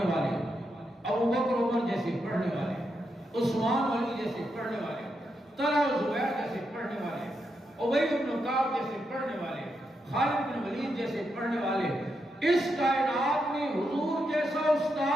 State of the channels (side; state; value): both; normal; correlation 0.83